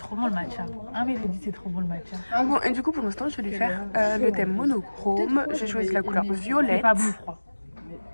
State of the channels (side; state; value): both; inverted; correlation -1.00